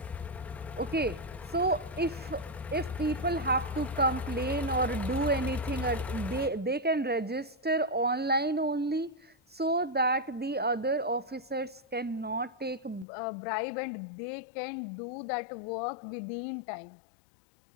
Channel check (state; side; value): drops out; right; at 13.1 s